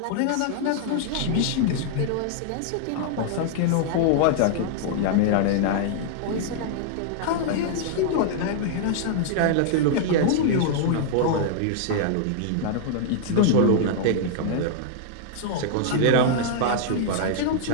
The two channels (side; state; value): both; different; correlation -0.01